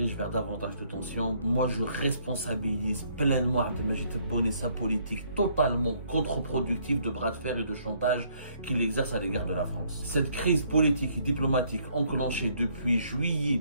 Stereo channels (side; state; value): both; inverted; correlation -0.66